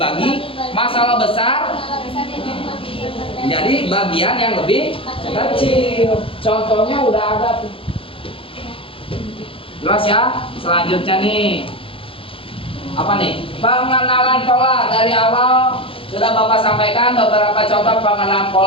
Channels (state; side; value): late; right; 0.26 ms